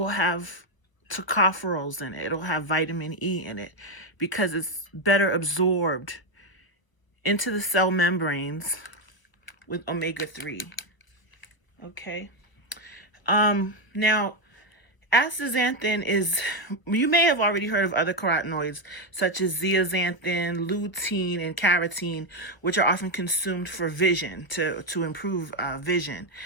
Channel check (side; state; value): right; late; 1.0 ms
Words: have tocopherols in it. It'll have vitamin E in it because it's better absorbed into the cell membranes with omega-3. Okay. Now, astaxanthin is, you may have already heard of other carotenoids such as zeaxanthin, lutein, and carotene, which are often consumed for vision, to improve vision.